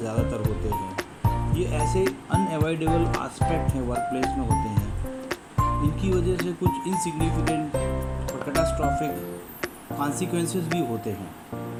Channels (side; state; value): both; identical; correlation 1.00